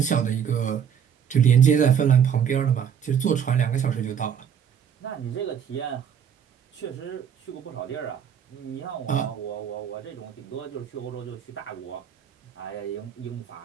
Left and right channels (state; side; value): quieter; left; 8.2 dB